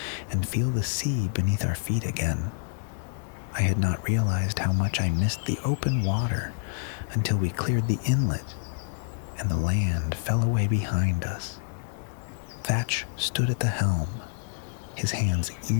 and feel the sea beneath our feet again. I had not realized how much I missed the open water until we cleared the inlet and the land fell away behind us. Thatch stood at the helm, his hands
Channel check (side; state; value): right; silent; digital silence